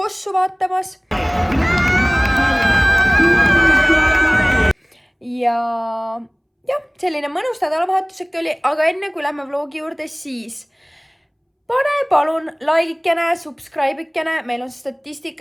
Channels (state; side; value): identical; both; correlation 1.00